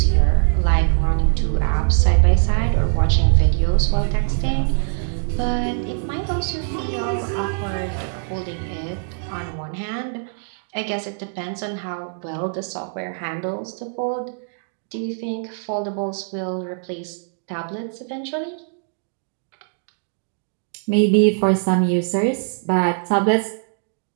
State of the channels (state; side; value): silent; left; digital silence